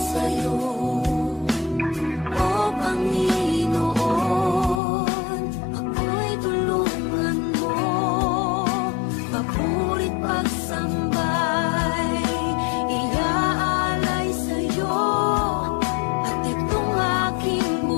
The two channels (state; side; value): drops out; right; at 4.8 s